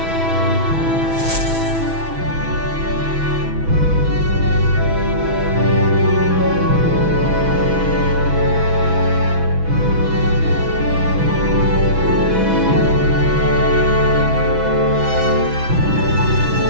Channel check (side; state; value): left; late; 6.1 ms